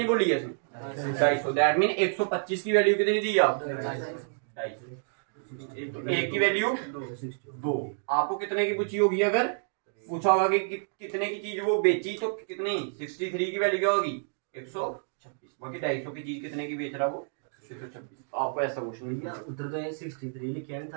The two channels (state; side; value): silent; left; digital silence